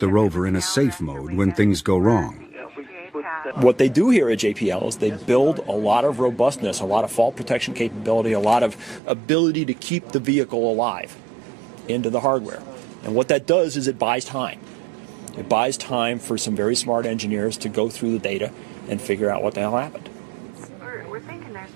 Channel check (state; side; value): drops out; left; at 9.0 s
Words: rover in a safe mode when things go wrong. What they do here at JPL is they build a lot of robustness, a lot of fault protection capability, a lot of ability to keep the vehicle alive into the hardware. And what that does is it buys time. It buys time for some very smart engineers to go through the data and figure out what the hell happened. We're thinking there's